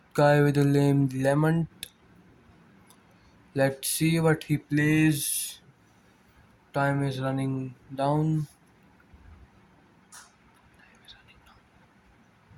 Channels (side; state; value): both; identical; correlation 1.00